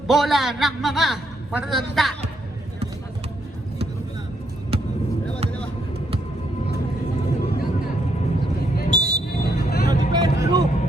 Bola ng mga matatanda.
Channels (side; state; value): both; normal; correlation 0.75